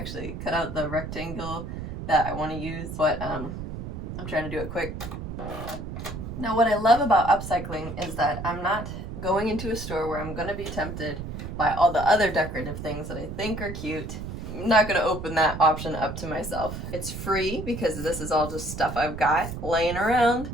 cut out the rectangle that I want to use, but I'm trying to do it quick. Now what I love about upcycling is that I'm not going into a store where I'm going to be tempted by all the other decorative things that I think are cute. I'm not going to open that option up to myself. It's free because this is all just stuff I've got laying around.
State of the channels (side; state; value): right; noise; rumble, 7 dB below the sound